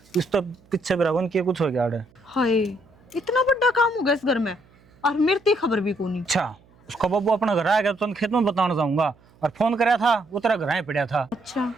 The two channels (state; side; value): noise; right; hum, 30 dB below the sound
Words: इस तो पीछे बराबर किया कुछ हो गया आड़े। हाय, इतना बड़ा काम हो गया इस घर में और मेरे तो खबर भी कोनी। अच्छा उसका बाबू अपना घर आ गया तो खेत में बताना चाहूंगा, और फोन कराया था वो तेरा घर ही पड़ा था। अच्छा,